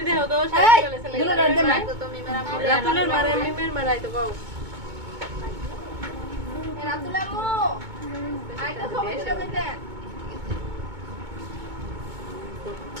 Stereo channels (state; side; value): late; left; 2.2 ms